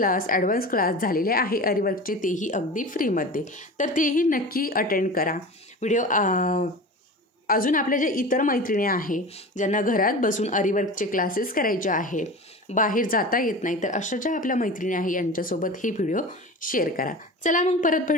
ॲडव्हान्स क्लास झालेले आहे अरिवर्कचे, तेही अगदी फ्रीमध्ये, तर तेही नक्की अटेंड करा. व्हिडिओ अजून आपल्या ज्या इतर मैत्रिणी आहे ज्यांना घरात बसून अरिवर्कचे क्लासेस करायचे आहे, बाहेर जाता येत नाही, तर अशा ज्या आपल्या मैत्रिणी आहे यांच्यासोबत हे व्हिडिओ शेअर करा. चला मग परत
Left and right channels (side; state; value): both; normal; correlation 0.33